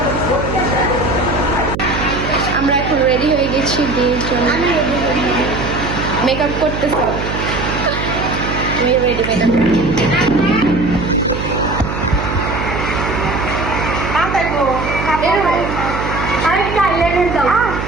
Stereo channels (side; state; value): right; noise; hum, 5 dB below the sound